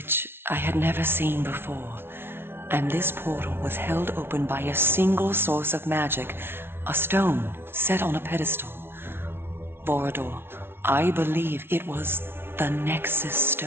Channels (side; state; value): left; late; 0.11 ms